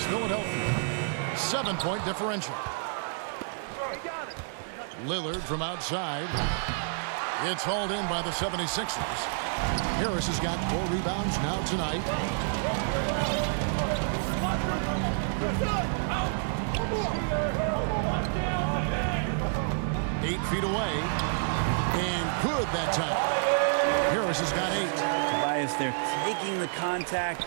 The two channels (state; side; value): silent; left; digital silence